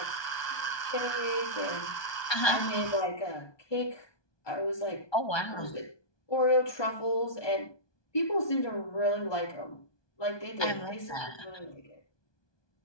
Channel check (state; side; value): late; right; 1.2 ms